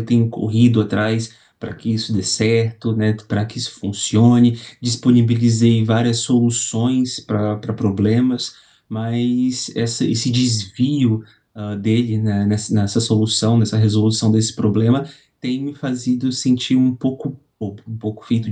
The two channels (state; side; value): identical; both; correlation 1.00